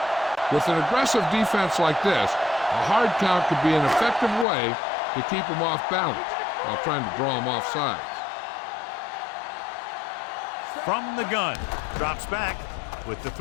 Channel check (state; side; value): drops out; right; at 4.5 s